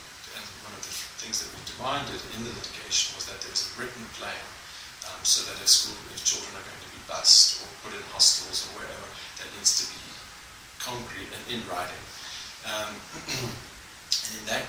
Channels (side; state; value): both; identical; correlation 1.00